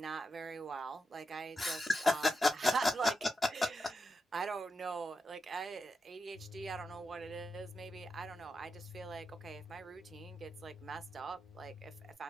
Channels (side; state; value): both; normal; correlation 0.87